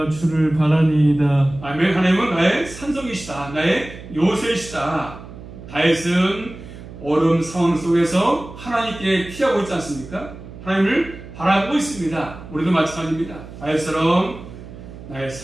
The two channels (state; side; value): noise; right; hum, 15 dB below the sound